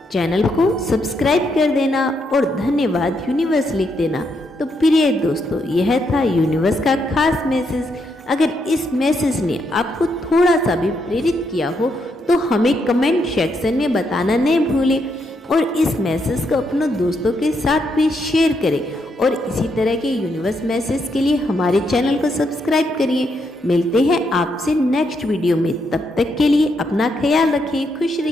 चैनल को सब्सक्राइब कर देना और धन्यवाद यूनिवर्स लिख देना। तो प्रिय दोस्तों, यह था यूनिवर्स का खास मैसेज। अगर इस मैसेज ने आपको थोड़ा सा भी प्रेरित किया हो तो हमें कमेंट सेक्शन में बताना नहीं भूलें और इस मैसेज को अपने दोस्तों के साथ भी शेयर करें और इसी तरह के यूनिवर्स मैसेज के लिए हमारे चैनल को सब्सक्राइब करिए। मिलते हैं आपसे नेक्स्ट वीडियो में, तब तक के लिए अपना ख्याल रखें, खुश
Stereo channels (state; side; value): normal; both; correlation 0.78